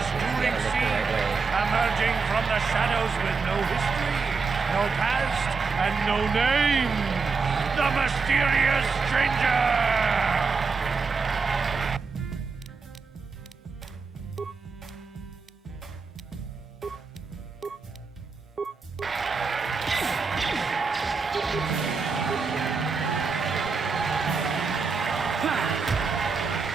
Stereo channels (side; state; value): left; quieter; 4.8 dB